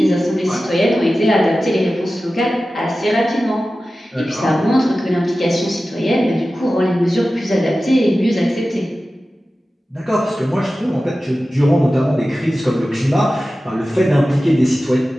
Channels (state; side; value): normal; both; correlation 0.95